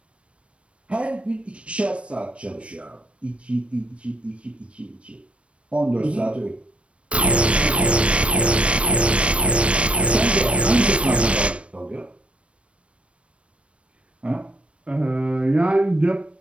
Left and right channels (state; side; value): late; left; 0.061 ms